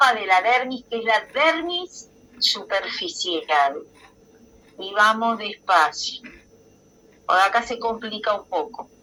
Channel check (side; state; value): both; identical; correlation 1.00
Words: de la dermis, que es la dermis superficial. Y vamos despacio. Por acá se complica un poco.